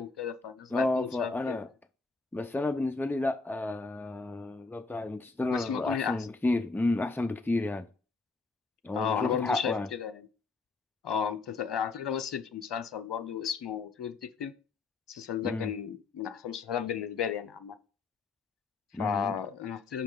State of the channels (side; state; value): right; quieter; 4.1 dB